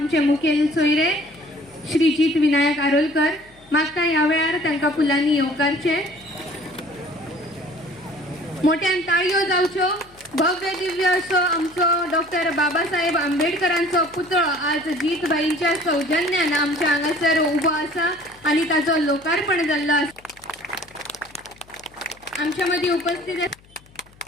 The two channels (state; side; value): noise; left; hum, 27 dB below the sound